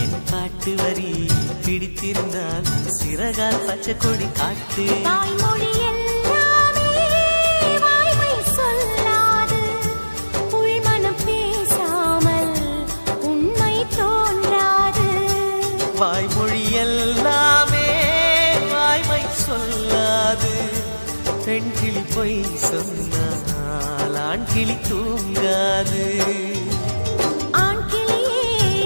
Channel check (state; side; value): inverted; both; correlation -1.00